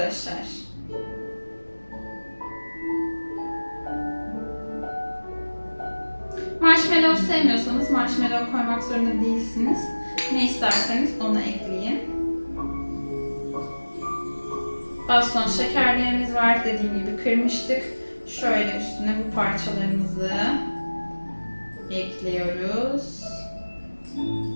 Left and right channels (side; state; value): both; inverted; correlation -1.00